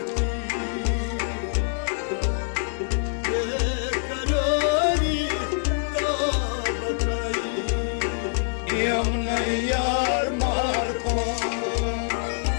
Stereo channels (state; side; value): silent; right; digital silence